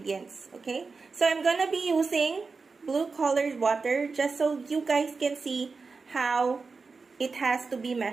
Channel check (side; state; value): left; quieter; 4.5 dB